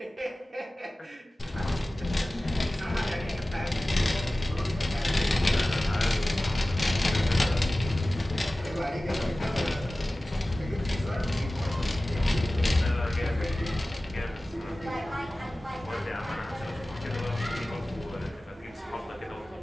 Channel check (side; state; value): both; normal; correlation 0.97